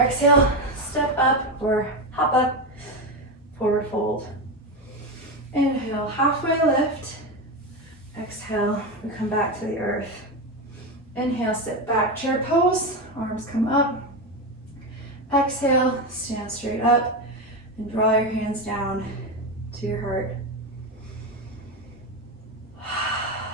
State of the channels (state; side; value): normal; both; correlation 0.15